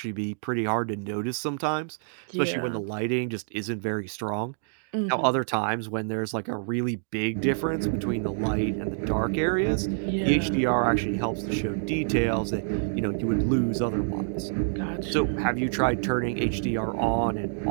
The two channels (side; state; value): left; silent; digital silence